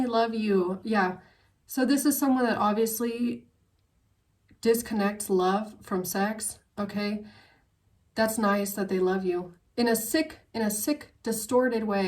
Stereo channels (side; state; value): both; identical; correlation 1.00